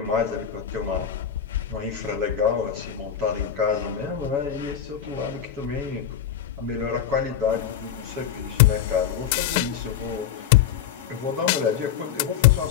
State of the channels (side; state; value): right; quieter; 9.0 dB